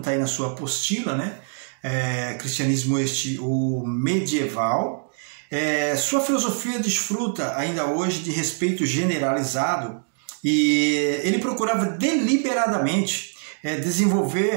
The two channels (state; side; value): silent; left; digital silence